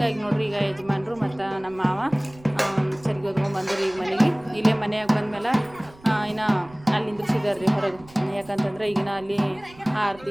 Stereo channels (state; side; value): noise; right; rumble, 23 dB below the sound